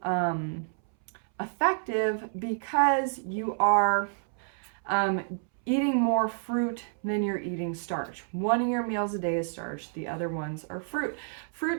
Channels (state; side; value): silent; left; 58 dB below the other